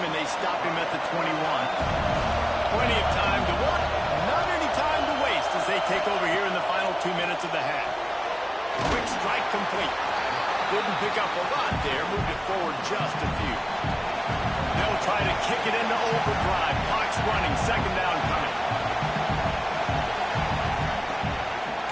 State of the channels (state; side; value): identical; both; correlation 1.00